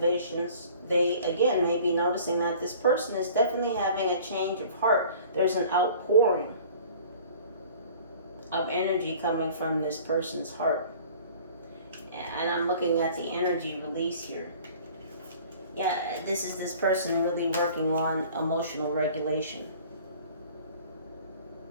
They, again, may be noticing that this person is definitely having a change of heart. There's an outpouring of energy coming from this person's heart. And I'm looking at the energy release here. Yeah, this is this person really working on emotional regulation.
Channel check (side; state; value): both; inverted; correlation -0.48